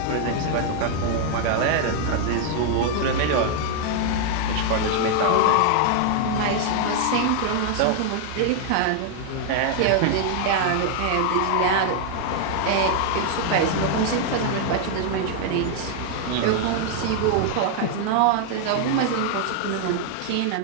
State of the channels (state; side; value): different; both; correlation 0.00